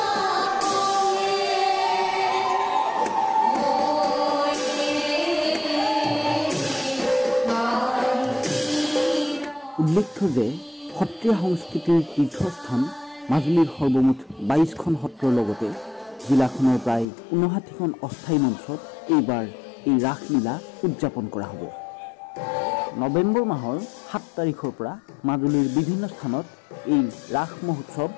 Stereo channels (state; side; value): drops out; right; at 17.1 s